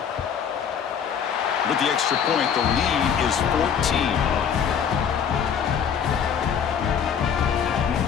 With the extra point, the lead is 14.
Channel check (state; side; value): quieter; right; 7.6 dB